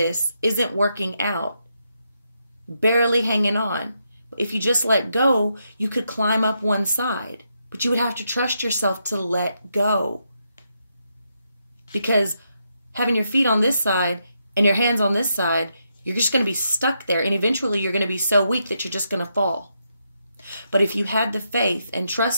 isn't working out. Barely hanging on. If you just let go, you could climb up one side, but you would have to trust yourself to let go. Because having your feet on this side and your hands on this side, you're just going to be stuck there. And eventually you're going to be so weak that you're just going to fall. But if you had the faith and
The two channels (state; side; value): inverted; both; correlation -0.81